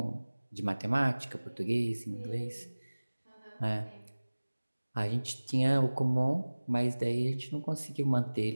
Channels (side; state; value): both; inverted; correlation -1.00